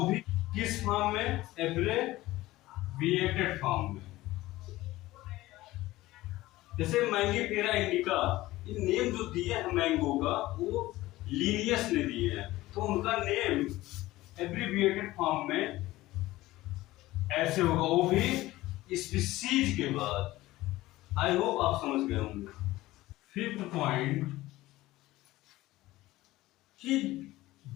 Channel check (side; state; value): right; quieter; 17.5 dB